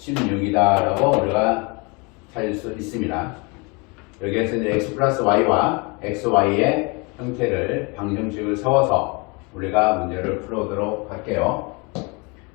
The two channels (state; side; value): quieter; right; 29.5 dB